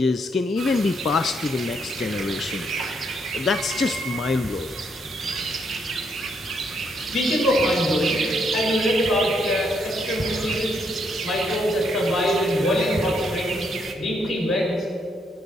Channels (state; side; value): normal; both; correlation 0.75